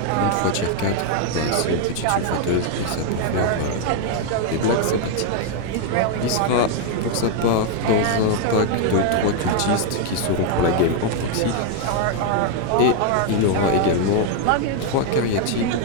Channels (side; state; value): both; different; correlation 0.01